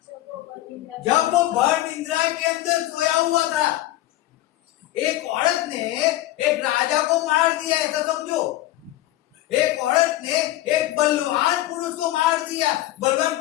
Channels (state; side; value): quieter; right; 15.5 dB